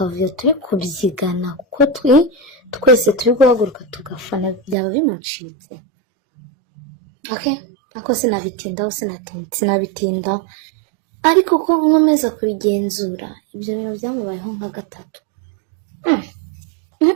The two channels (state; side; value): drops out; left; at 4.8 s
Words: turi kubyigana, kuko twese turi guhaguruka tugafana, byaba bimucitse. Ako sinabitindaho, ariko ko nkomeza kubigenzura, ibyo bintu byamubayeho nka gatatu.